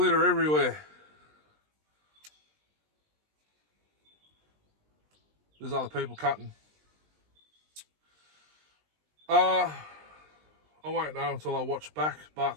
everywhere. There's other people cutting. I won't know until I watch back,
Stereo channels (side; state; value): left; late; 20 ms